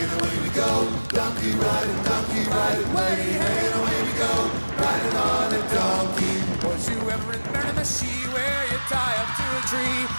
and away we go, donkey riding, way hey and away we go, riding on a donkey. Was you ever in Miramichi, where you tie up to a tree,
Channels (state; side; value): inverted; both; correlation -1.00